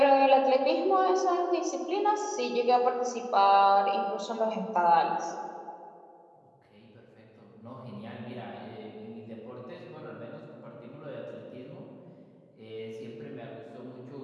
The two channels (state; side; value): identical; both; correlation 1.00